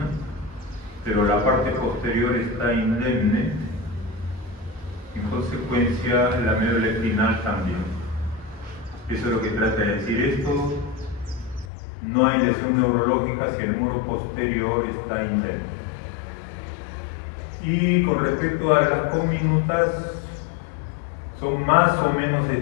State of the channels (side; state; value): right; drops out; at 11.7 s